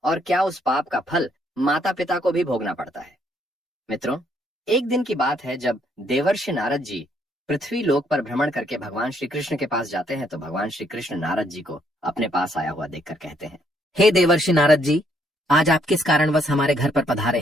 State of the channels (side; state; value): both; normal; correlation 0.70